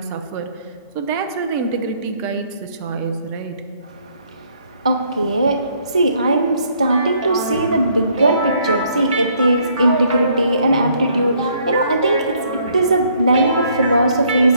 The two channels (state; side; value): inverted; both; correlation -0.66